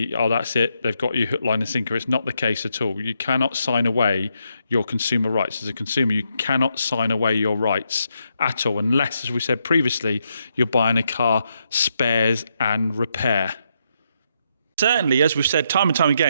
oh, that's it, they've got you hook, line and sinker. It's not the case at all. You cannot sign away your consumer rights. As a consumer, you cannot sign away your rights at all, unless, as we said previously, you're buying a car, spares and repair. Certainly, as we've said time and time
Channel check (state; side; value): inverted; both; correlation -0.80